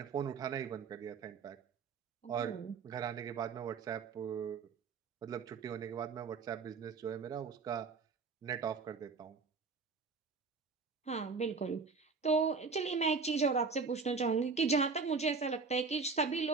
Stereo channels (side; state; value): left; quieter; 4.8 dB